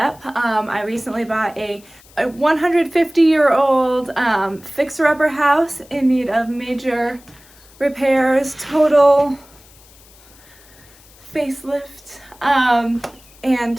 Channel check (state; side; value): noise; left; hiss, 26 dB below the sound